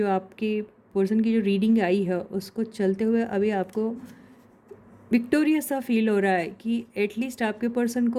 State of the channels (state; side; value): identical; both; correlation 1.00